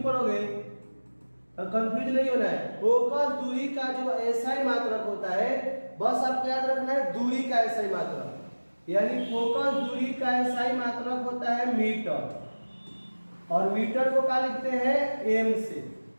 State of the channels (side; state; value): both; inverted; correlation -1.00